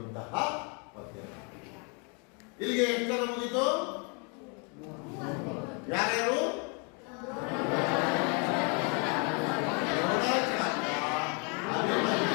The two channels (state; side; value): quieter; right; 34.7 dB